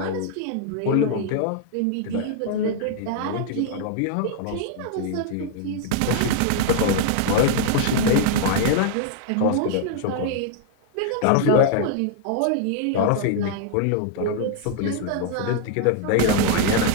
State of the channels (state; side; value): different; both; correlation 0.00